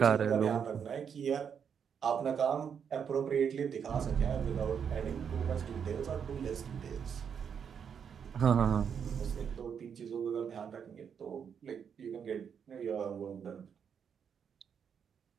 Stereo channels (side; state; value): left; quieter; 7.4 dB